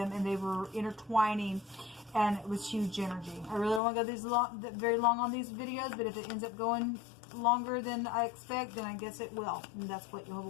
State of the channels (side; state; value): right; drops out; at 3.8 s